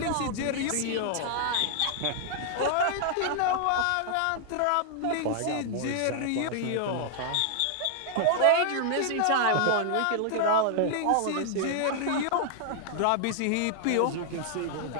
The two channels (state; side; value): different; both; correlation 0.00